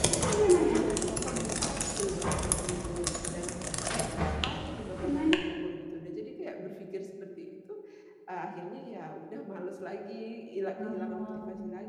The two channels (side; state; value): both; identical; correlation 1.00